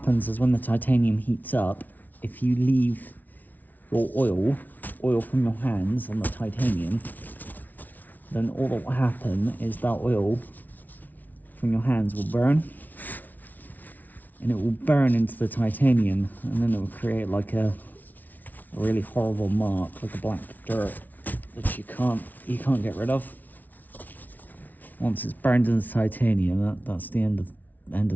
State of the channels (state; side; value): late; right; 0.080 ms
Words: is when the titanium heats up, if you leave your oil from your hands on the titanium, then all that will happen is that oil from your hands will burn, and it will burn into the titanium, and then it will create like a really horrible mark, like a black dirt that you can't get rid of. Once it's burned into the titanium, that's the end of